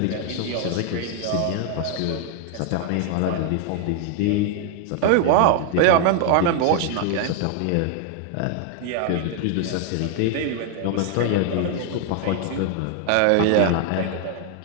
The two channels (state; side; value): different; both; correlation 0.00